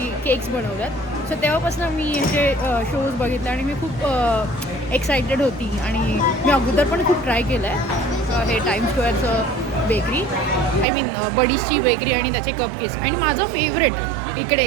केक्स बनवतात. सो तेव्हापासून मी ह्याचे शोज बघितले आणि मी खूप एक्सायटेड होती. आणि मी अगोदर पण खूप ट्राय केलं आहे हे टाइम स्क्वेअरचं बेकरी, आय मीन बडीजची बेकरी आणि त्याचे कप केक्स. आणि माझं फेवरेट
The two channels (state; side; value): drops out; left; at 10.9 s